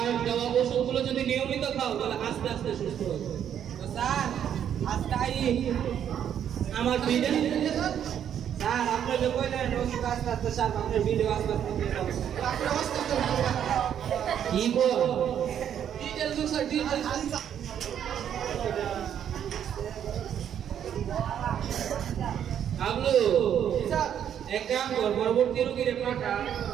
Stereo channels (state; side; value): quieter; left; 9.4 dB